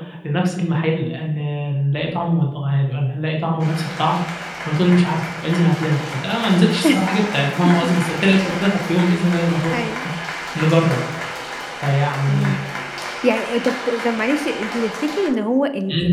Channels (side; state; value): both; identical; correlation 1.00